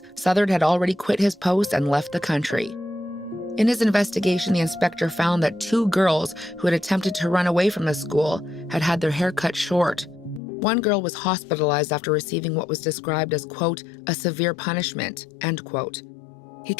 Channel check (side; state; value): right; drops out; at 10.4 s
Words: Southard had already quit his post and left the country. In his investigation, the inspector found that 2 girls who had attempted to run away from the school had had their hair cut short. One girl was hospitalized after receiving what was described as, quote, a severe punishment, end quote. He